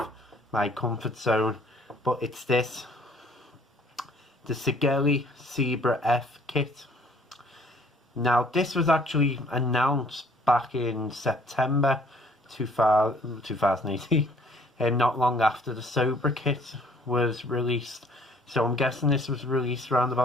my comfort zone, but it's this. The Sigelei Sibra F kit. Now this was actually announced back in September 2018 and not long after the Sober kit was released, so I'm guessing this was released around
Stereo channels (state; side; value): normal; both; correlation 0.58